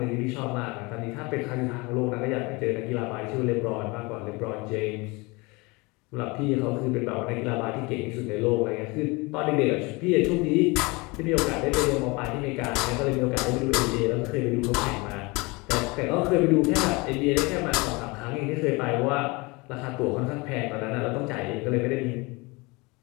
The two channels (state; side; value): quieter; right; 25.9 dB